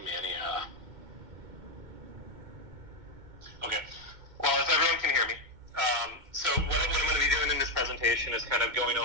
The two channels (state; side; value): late; left; 2.2 ms